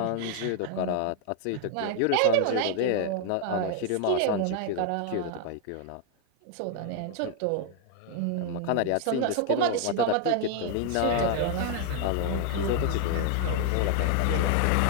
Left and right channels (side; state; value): both; different; correlation 0.00